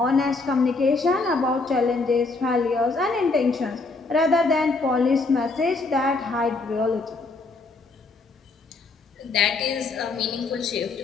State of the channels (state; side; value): quieter; right; 3.7 dB